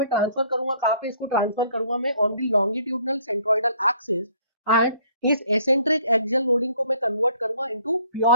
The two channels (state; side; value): inverted; both; correlation -0.61